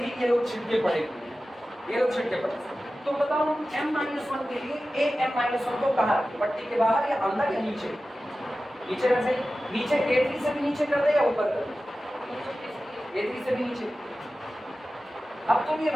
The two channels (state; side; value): normal; both; correlation 0.95